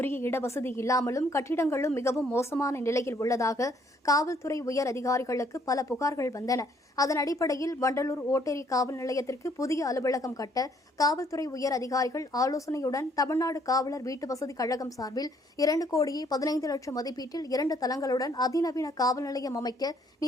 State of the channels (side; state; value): both; normal; correlation 0.65